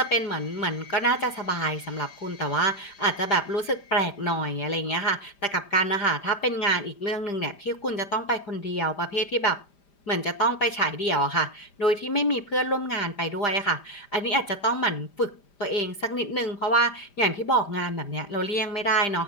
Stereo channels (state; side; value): late; right; 5.0 ms